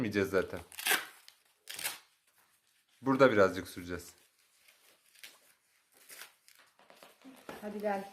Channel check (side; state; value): both; identical; correlation 1.00